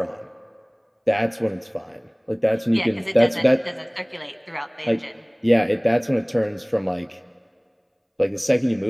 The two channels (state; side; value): identical; both; correlation 1.00